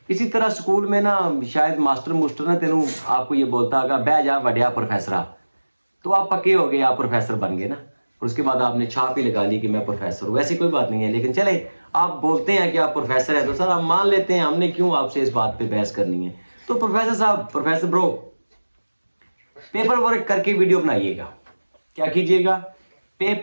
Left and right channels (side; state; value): both; inverted; correlation -1.00